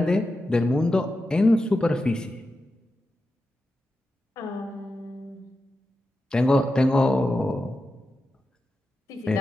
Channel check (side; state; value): both; normal; correlation 0.90